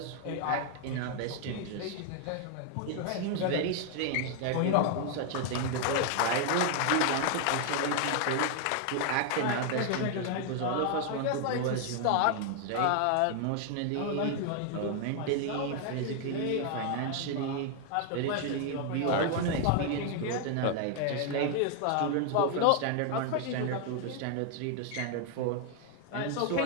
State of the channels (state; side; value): different; both; correlation 0.00